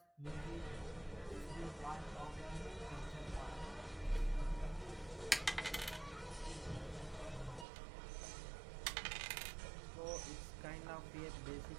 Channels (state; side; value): drops out; left; at 7.7 s